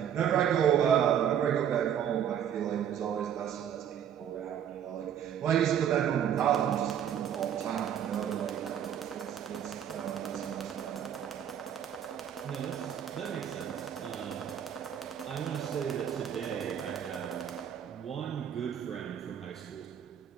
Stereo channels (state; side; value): quieter; left; 9.2 dB